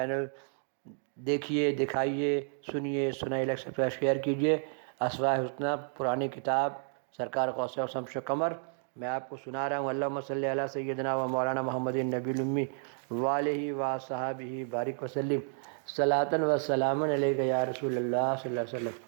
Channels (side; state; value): left; silent; 57 dB below the other